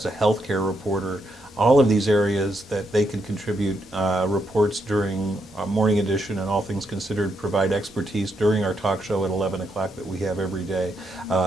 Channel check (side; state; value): both; normal; correlation 0.79